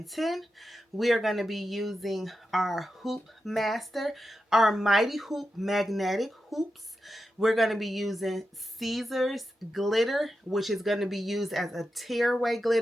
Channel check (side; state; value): both; normal; correlation 0.89